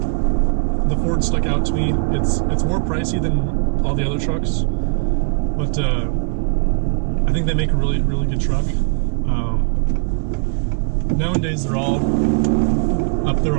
The Ford stuck out to me. It's more pricey than all the other trucks, but I think they make a really, really good truck. Nowadays they're all up there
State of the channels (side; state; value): left; quieter; 36.3 dB